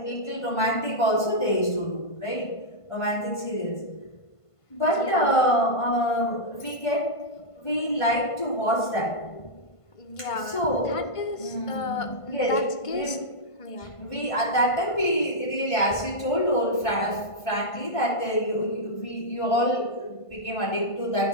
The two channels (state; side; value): late; right; 1.5 ms